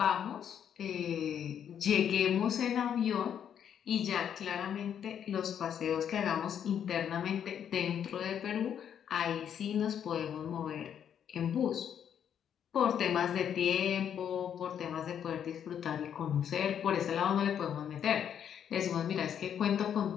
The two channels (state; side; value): quieter; right; 8.9 dB